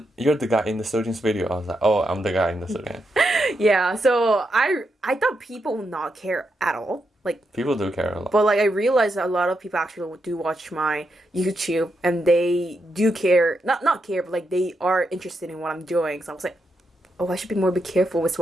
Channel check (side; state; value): both; normal; correlation 0.83